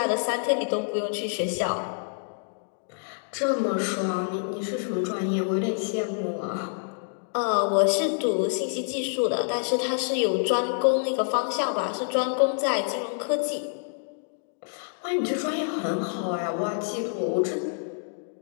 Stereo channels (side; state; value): right; silent; digital silence